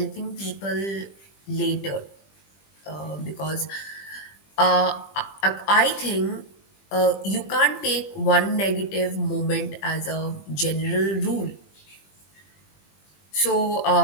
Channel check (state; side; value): late; right; 20 ms